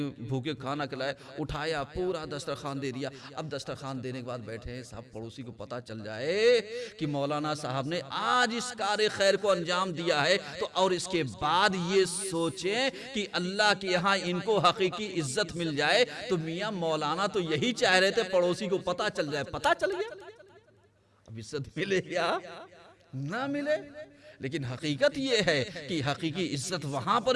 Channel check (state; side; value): identical; both; correlation 1.00